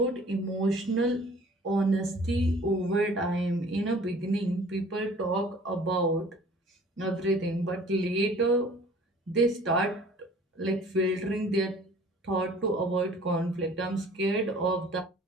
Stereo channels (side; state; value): both; normal; correlation 0.50